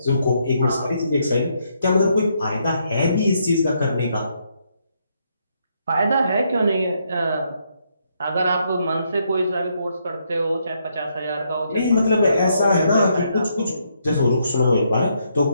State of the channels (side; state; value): both; inverted; correlation -0.75